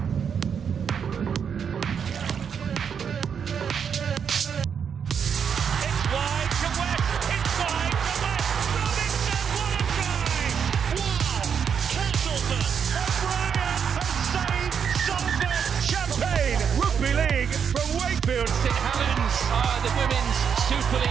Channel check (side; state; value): left; quieter; 7.2 dB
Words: Rugby League from Wakefield. St Helens are the Women's Super